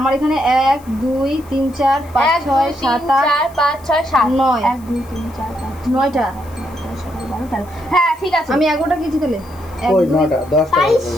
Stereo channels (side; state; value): left; noise; hiss, 26 dB below the sound